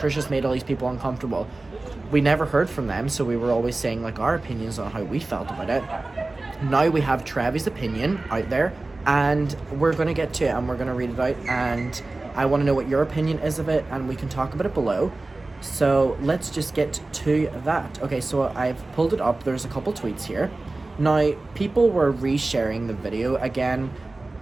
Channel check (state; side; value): quieter; left; 3.1 dB